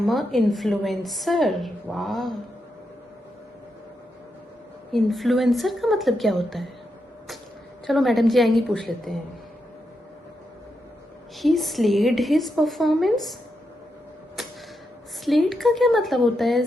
अ इन्फ्लुएंसर। वाह, इन्फ्लुएंसर का मतलब क्या होता है? चलो मैडम जी आएंगी, पूछ लेते हैं। ही स्लेड हिज परफॉर्मेंस। स्लेड का क्या मतलब होता है?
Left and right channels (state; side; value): normal; both; correlation 0.84